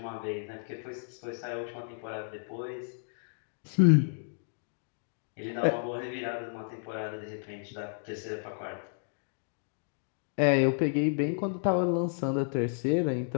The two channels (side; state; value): right; silent; digital silence